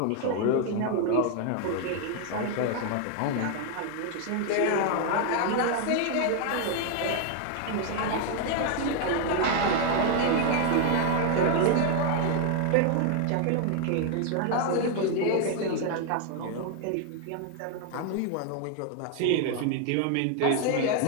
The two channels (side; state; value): both; different; correlation 0.00